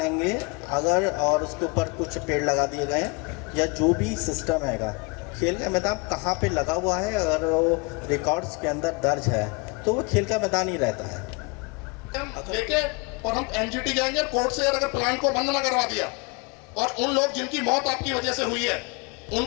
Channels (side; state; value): right; quieter; 29.1 dB